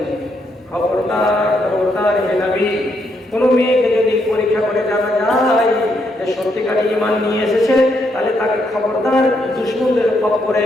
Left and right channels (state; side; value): normal; both; correlation 0.77